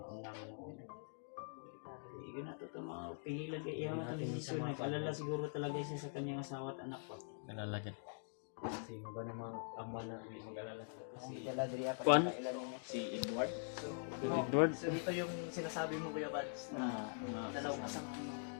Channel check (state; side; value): silent; right; digital silence